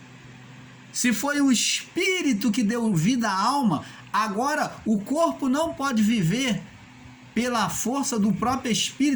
Se foi o espírito que deu vida à alma, agora o corpo não pode viver pela força do próprio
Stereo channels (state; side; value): identical; both; correlation 1.00